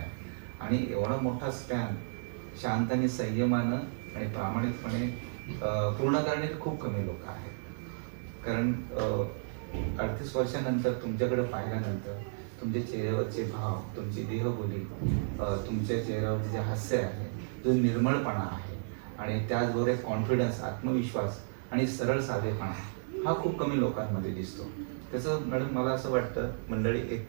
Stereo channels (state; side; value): silent; left; digital silence